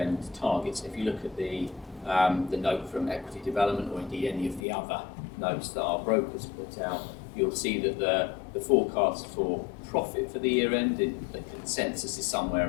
targets. If you look at the note from Equity Development, or indeed any of the other notes that our brokers put out, you'll see that the forecast for profit for the year-end, the consensus is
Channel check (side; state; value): right; drops out; at 4.6 s